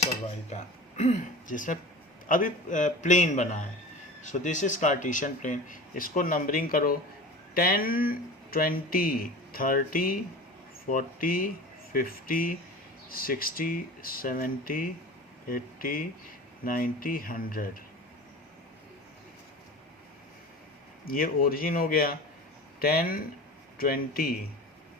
और y का, जिसमें अभी प्लेन बना है। So this is Cartesian plane. इसको नंबरिंग करो 10 20 30 40 50 60 70 80 90 100। ये ओरिजिन हो गया 10 20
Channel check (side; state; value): both; normal; correlation 0.35